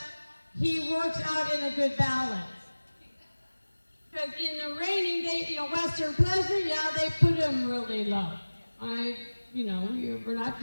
he works out in a good balance. Because in the reining, Western Pleasure, they put him really low. We're not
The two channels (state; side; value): inverted; both; correlation -1.00